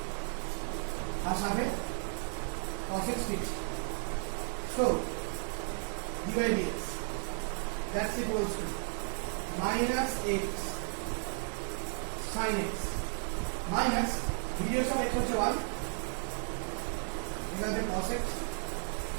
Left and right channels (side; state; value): left; silent; 55 dB below the other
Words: আর সাথে cos x fixed. So dy dx, that's equals to minus x sin x minus ddx of x হচ্ছে 1 এখানে cos x